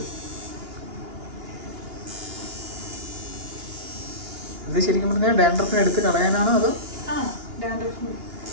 ഇത് ശരിക്കും പറഞ്ഞാൽ ഡാൻഡ്രഫിനെ എടുത്ത് കളയാനാണോ അതോ?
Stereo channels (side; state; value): left; late; 2.8 ms